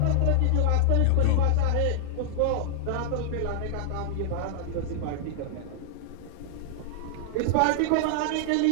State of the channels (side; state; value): both; different; correlation -0.01